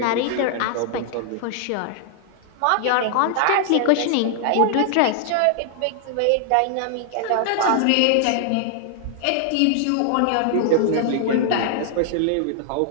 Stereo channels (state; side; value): different; both; correlation 0.00